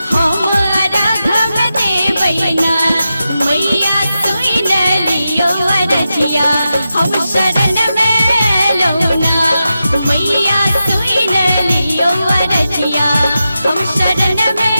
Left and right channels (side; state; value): both; inverted; correlation -0.90